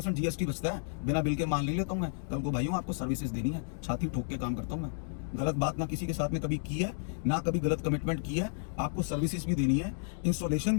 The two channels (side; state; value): right; silent; digital silence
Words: GST बचता है, बिना बिल के मान नहीं लेता हूं मैं। कल को भाइयों आपको सर्विसेज देनी है, छाती ठोक के काम करता हूं मैं। गलत बात ना किसी के साथ में कभी की है, ना कभी गलत कमिटमेंट की है। आपको सर्विसेज भी देनी है, इंस्टॉलेशन